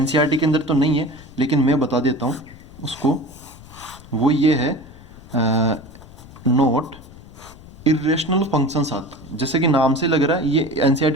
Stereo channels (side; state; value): left; noise; rumble, 20 dB below the sound